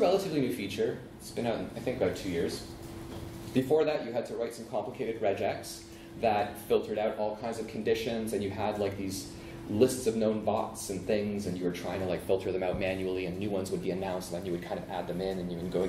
relatively new feature. It's been out, I think, about 2 years. Before that, you had to write some complicated regex that filtered out all kinds of conditions, and you had like these lists of known bots and things, and you were trying to like filter them out manually, and new ones would be announced, and then you would kind of add them in, and you would go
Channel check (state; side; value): identical; both; correlation 1.00